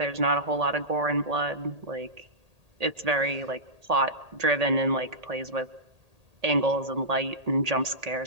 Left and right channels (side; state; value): left; late; 1.8 ms